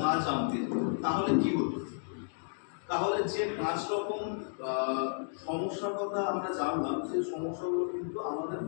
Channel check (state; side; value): silent; right; digital silence